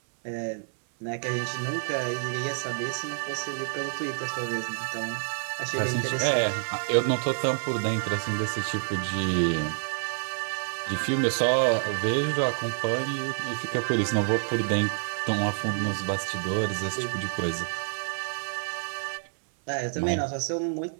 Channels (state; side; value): silent; left; 59 dB below the other